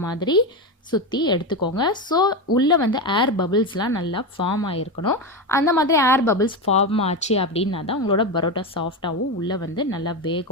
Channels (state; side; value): normal; both; correlation 0.15